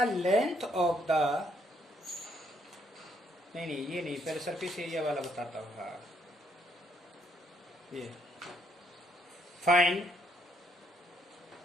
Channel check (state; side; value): normal; both; correlation 0.71